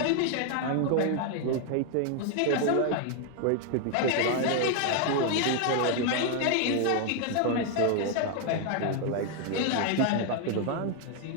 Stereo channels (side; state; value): both; different; correlation 0.01